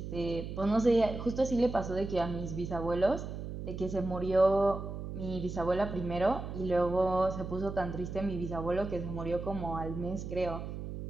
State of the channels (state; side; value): noise; right; hum, 7 dB below the sound